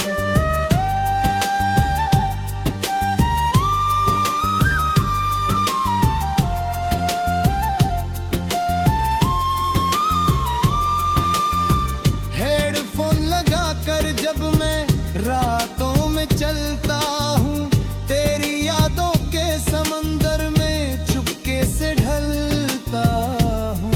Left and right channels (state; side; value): identical; both; correlation 1.00